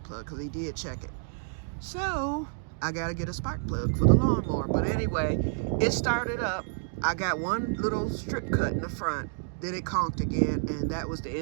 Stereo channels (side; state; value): left; silent; digital silence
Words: plug, because he did check it. So I gotta get a spark plug for the lawnmower. But anyway, it started up. I got one little strip cut in the front, then it conked again, and that was the